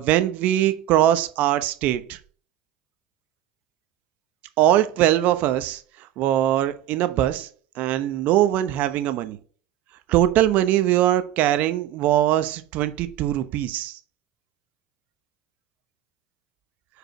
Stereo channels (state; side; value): quieter; left; 12.4 dB